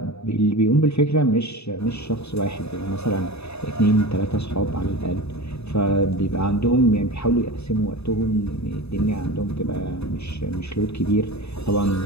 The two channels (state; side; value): late; right; 0.79 ms